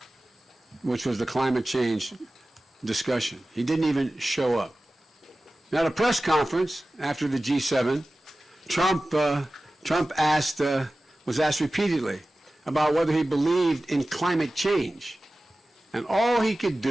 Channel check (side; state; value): both; normal; correlation 0.96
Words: which was the climate change discussion. He didn't even show up. Now, at a press conference after the G7, Trump was asked repeatedly about whether he believed in climate change. And all he could